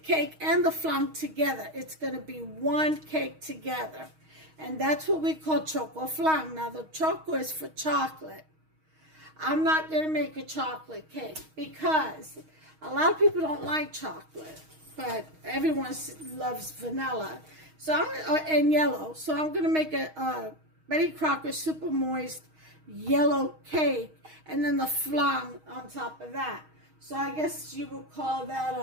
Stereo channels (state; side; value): late; left; 6.4 ms